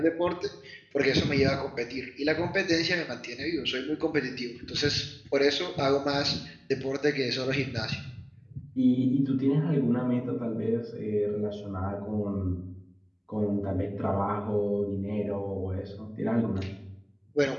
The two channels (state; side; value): identical; both; correlation 1.00